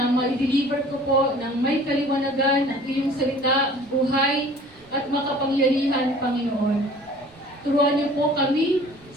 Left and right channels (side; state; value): right; noise; rumble, 29 dB below the sound